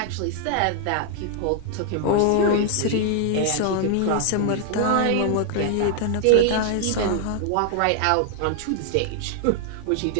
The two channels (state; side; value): different; both; correlation 0.00